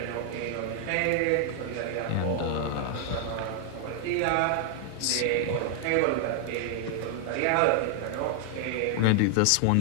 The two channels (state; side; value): different; both; correlation 0.00